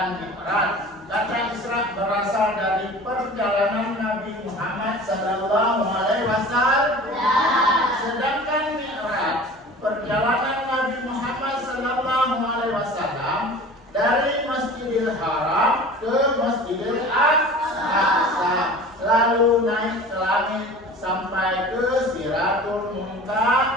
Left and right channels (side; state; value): both; normal; correlation 0.40